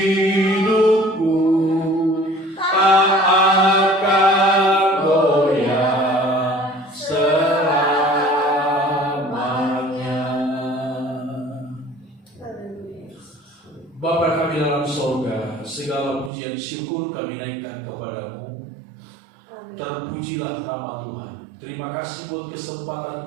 tak akan goyah selamanya. Bapa kami dalam sorga, segala pujian syukur kami naikkan kepada-Mu. Terpujilah nama Tuhan. Terima kasih buat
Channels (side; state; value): left; drops out; at 16.3 s